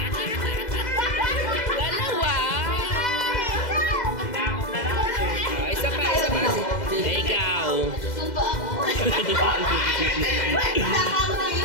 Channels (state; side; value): late; right; 2.0 ms